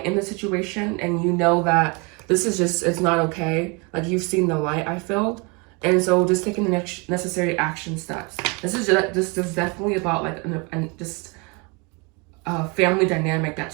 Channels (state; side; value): quieter; left; 30.3 dB